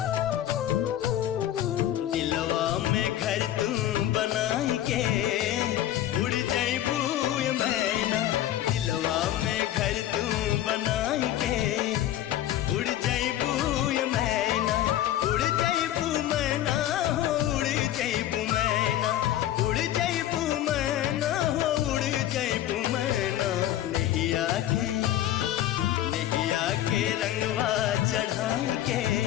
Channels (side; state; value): right; quieter; 12.7 dB